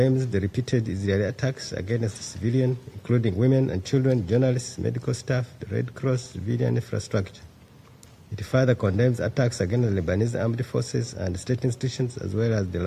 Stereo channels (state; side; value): identical; both; correlation 1.00